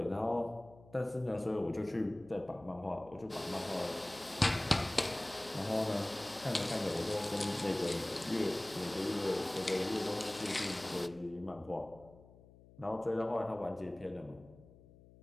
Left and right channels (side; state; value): left; noise; hum, 23 dB below the sound